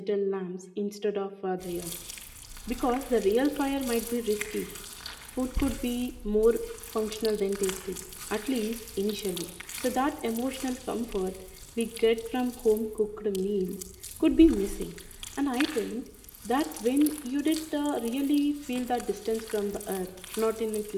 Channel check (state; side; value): identical; both; correlation 1.00